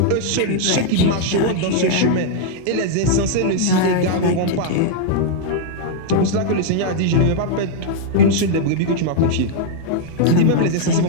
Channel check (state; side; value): different; both; correlation -0.01